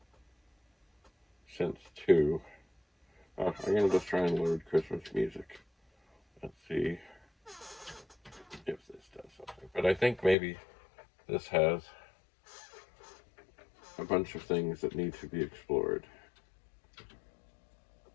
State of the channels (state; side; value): drops out; right; at 10.4 s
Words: Synth 2. Oh, I'm going to just try and load Christmas music. Let's see if this does something. But I think maybe this has a bunch of things that need to be explored.